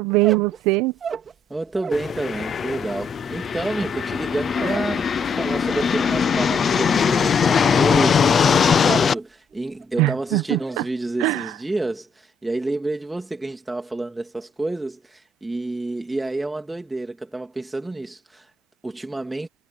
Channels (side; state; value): both; normal; correlation 0.71